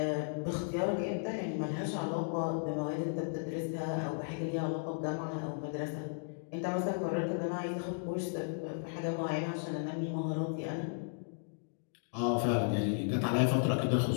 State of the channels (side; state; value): right; silent; digital silence